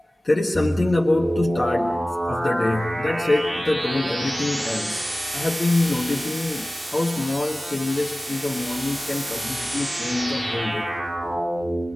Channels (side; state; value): both; normal; correlation 0.97